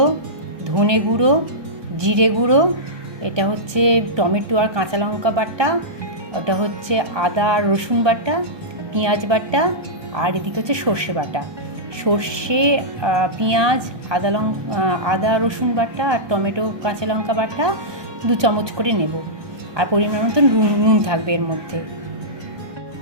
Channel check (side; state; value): left; late; 1.2 ms